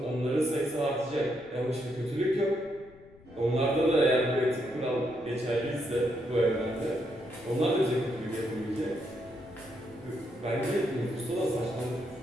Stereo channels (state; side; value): noise; left; rumble, 24 dB below the sound